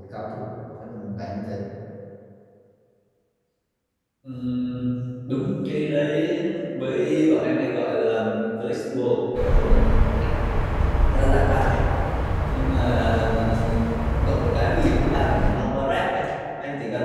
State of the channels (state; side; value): identical; both; correlation 1.00